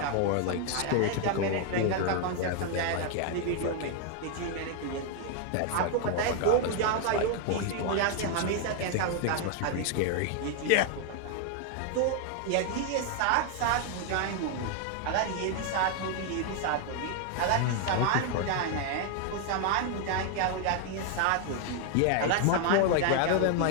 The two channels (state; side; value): different; both; correlation 0.00